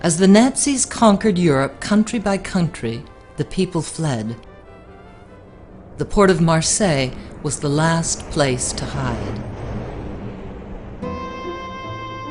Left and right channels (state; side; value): identical; both; correlation 1.00